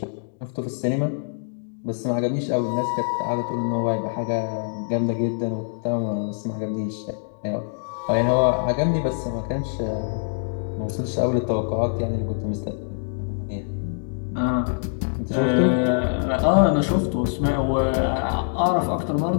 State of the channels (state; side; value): silent; right; digital silence